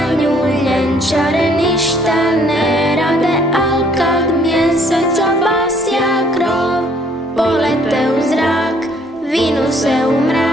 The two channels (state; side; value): normal; both; correlation 0.62